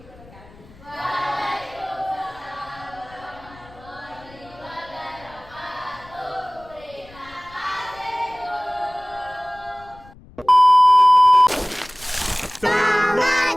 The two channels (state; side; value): noise; left; rumble, 23 dB below the sound